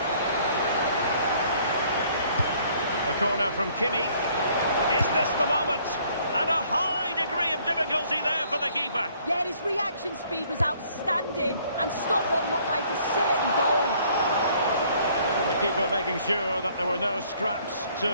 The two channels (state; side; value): inverted; both; correlation -0.61